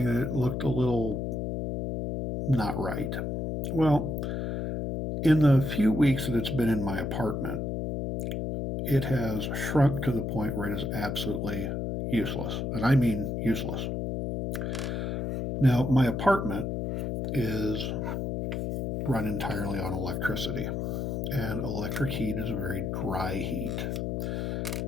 that it looked a little not right. Well, in the few weeks that it's been in my apartment, it has shrunk to the point where it is absolutely useless. And I mean useless. Now, my apartment is run entirely on electricity, and electric heat is a very dry heat.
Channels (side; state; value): left; noise; hum, 2 dB below the sound